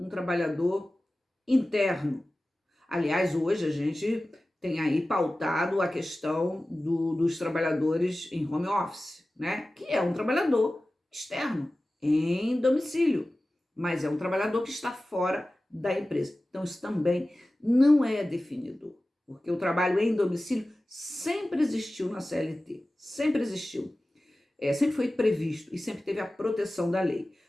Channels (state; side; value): normal; both; correlation 0.96